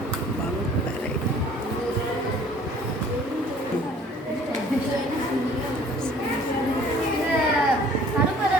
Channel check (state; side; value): normal; both; correlation 0.53